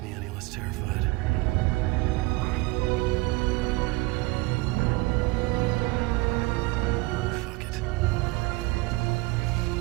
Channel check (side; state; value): left; quieter; 22.5 dB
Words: me any less terrified. Fuck it.